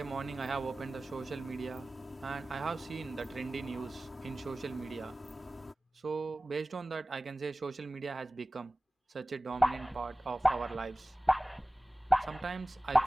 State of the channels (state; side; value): normal; both; correlation 0.97